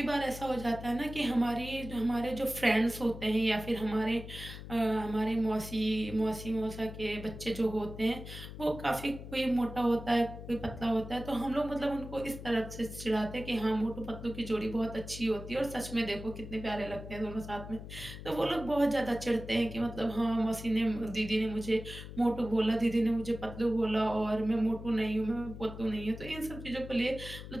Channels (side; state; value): left; noise; hum, 11 dB below the sound